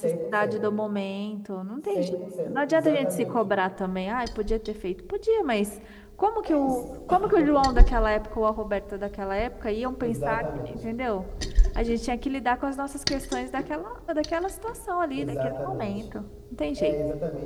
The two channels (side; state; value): both; identical; correlation 1.00